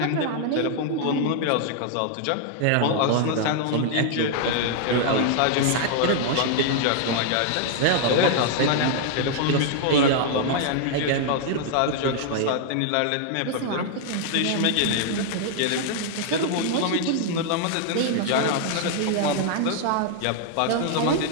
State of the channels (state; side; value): different; both; correlation 0.00